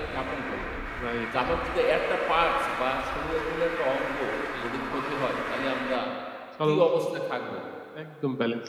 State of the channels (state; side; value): identical; both; correlation 1.00